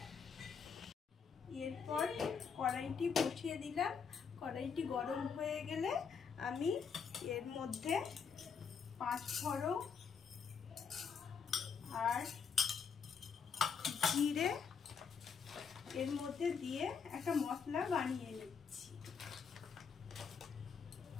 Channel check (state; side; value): quieter; right; 6.2 dB